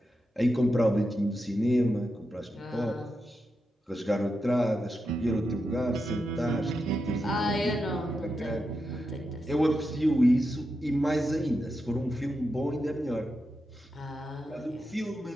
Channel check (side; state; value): both; normal; correlation 0.87